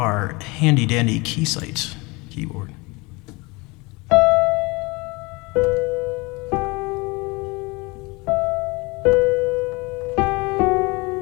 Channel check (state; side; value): quieter; right; 25.7 dB